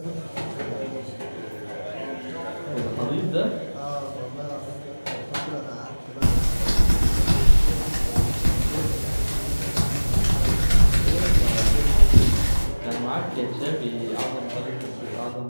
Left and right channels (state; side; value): inverted; both; correlation -1.00